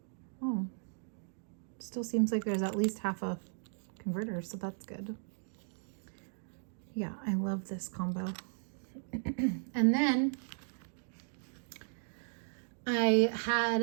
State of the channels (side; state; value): left; silent; digital silence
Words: Oh, still seems like there's at least half a converter, so that's good. Yeah, I love this combo. And then I